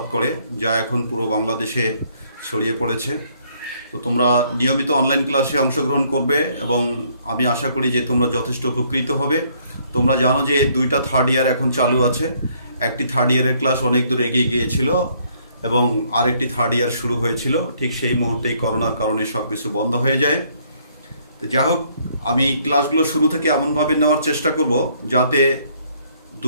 করে, যা এখন পুরো বাংলাদেশে ছড়িয়ে পড়েছে। তো তোমরা নিয়মিত অনলাইন ক্লাসে অংশগ্রহণ করবে এবং আমি আশা করি যে তোমরা যথেষ্ট উপকৃত হবে। তোমরা জানো যে দুইটা থার্ড ইয়ার এখন চালু আছে। একটি থার্ড ইয়ারের ক্লাস অনেক দূর এগিয়ে গিয়েছিল এবং আরেকটি থার্ড ইয়ার শুরু হয়েছিল। ঠিক সেই মুহূর্তেই করোনার কারণে সব কিছু বন্ধ হয়ে যায়। তো যা হোক, আমি ক্লাসগুলো শুরু থেকে এমনভাবে নেওয়ার চেষ্টা করব যাতে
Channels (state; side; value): inverted; both; correlation -0.66